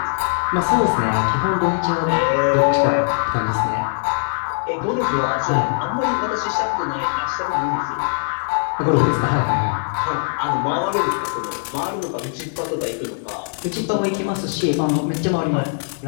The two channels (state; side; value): silent; right; digital silence